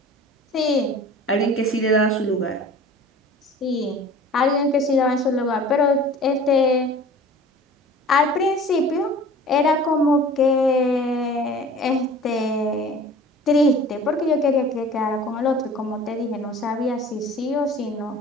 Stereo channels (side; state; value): both; normal; correlation 0.43